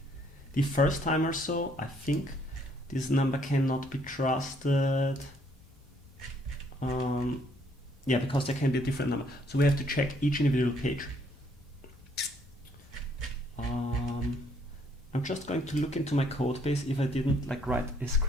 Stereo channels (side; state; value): both; normal; correlation 0.66